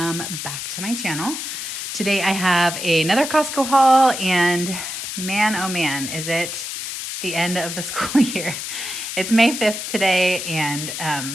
back to my channel. Today I have another Costco haul and man, oh man, is it the end of the school year. It's May 5th today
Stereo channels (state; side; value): noise; left; hiss, 6 dB below the sound